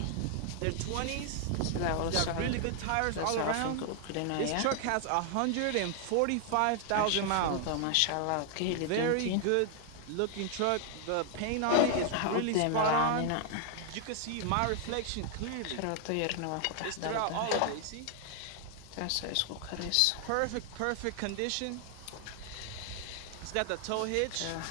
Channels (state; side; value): different; both; correlation 0.00